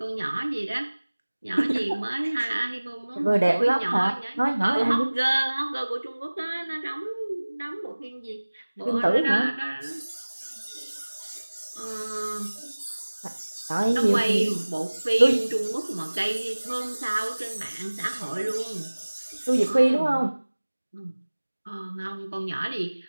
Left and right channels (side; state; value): both; inverted; correlation -1.00